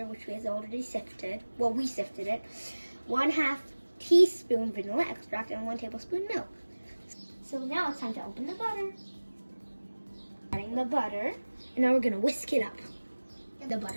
which we have already sifted. Well, we sifted it. 1/2 teaspoon vanilla extract and 1 tablespoon milk. So now it's time to open the butter. Adding the butter, and now we're gonna whisk it up. The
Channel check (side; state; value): both; inverted; correlation -1.00